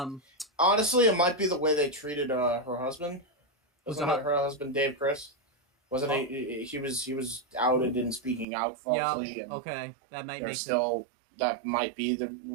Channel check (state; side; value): drops out; left; at 8.5 s